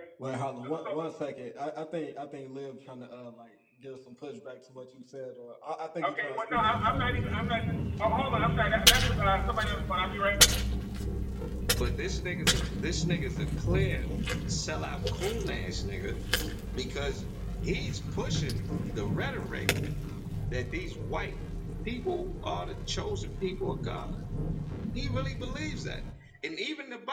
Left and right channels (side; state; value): both; identical; correlation 1.00